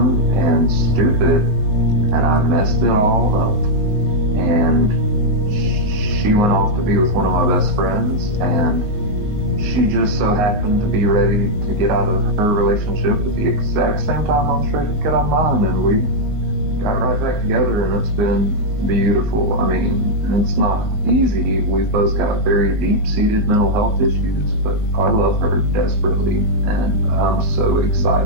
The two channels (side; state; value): left; late; 19 ms